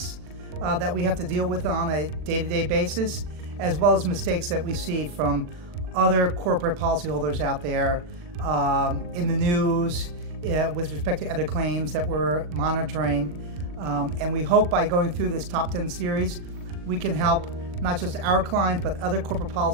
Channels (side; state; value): left; late; 40 ms